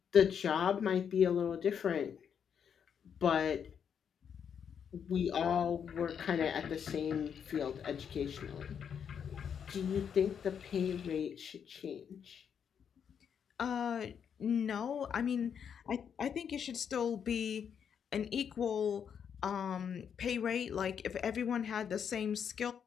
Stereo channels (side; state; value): right; quieter; 7.7 dB